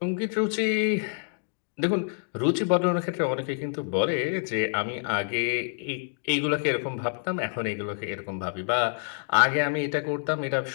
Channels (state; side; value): silent; right; digital silence